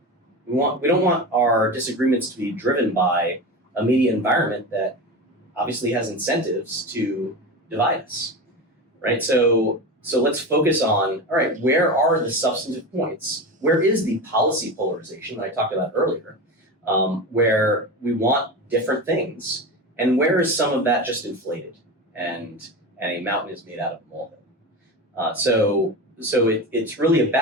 We don't want our disagreements to be driven by a media environment that obviously has incentives to divide us, right? So let's focus on, all right, where are the substantive points? Where is the policy polarization that I talked about earlier, where we want different things, and where is some of that just inflated and a mountain is made out of a molehill? So it's really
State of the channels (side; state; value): both; normal; correlation 0.24